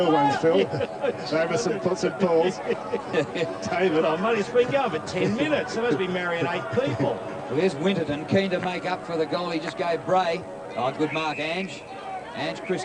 ones, Phil. Over some puts and pulls. David, I'm only been going for 10 minutes. There must be marrying 8 people. Well, here's Winterton, keen to make up for the goal he just gave Bray. Oh, good mark, Ange. Ange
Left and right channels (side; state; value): both; identical; correlation 1.00